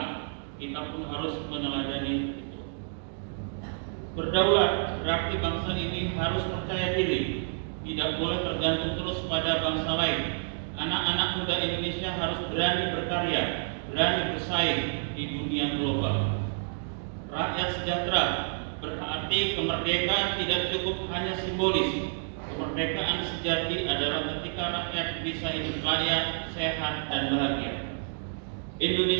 Kita pun harus meneladani itu. Berdaulat berarti bangsa ini harus percaya diri, tidak boleh tergantung terus pada bangsa lain. Anak-anak muda Indonesia harus berani berkarya, berani bersaing di dunia global. Rakyat sejahtera berarti kemerdekaan tidak cukup hanya simbolis. Kemerdekaan sejati adalah ketika rakyat bisa hidup layak, sehat, dan bahagia.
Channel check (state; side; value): silent; left; digital silence